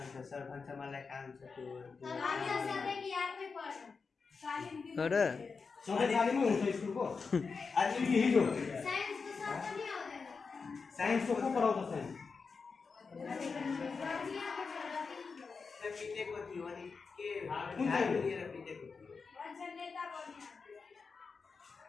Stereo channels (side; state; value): right; quieter; 4.9 dB